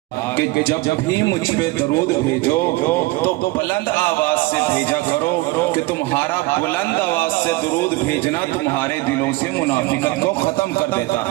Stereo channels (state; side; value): quieter; left; 20.9 dB